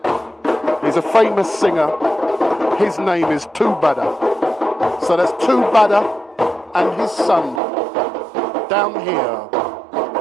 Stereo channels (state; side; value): drops out; left; at 7.6 s